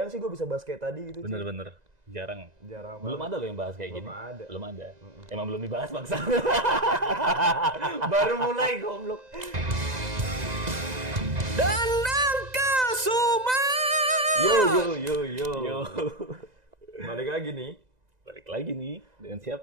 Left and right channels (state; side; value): late; left; 2.0 ms